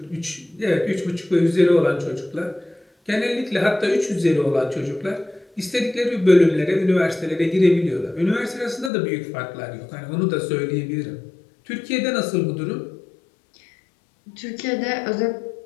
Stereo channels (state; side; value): drops out; right; at 8.9 s